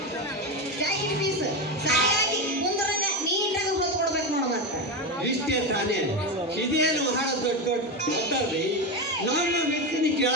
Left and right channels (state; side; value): normal; both; correlation 0.15